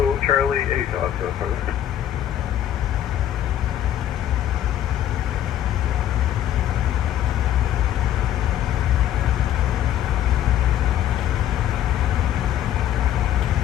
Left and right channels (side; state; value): right; quieter; 11.3 dB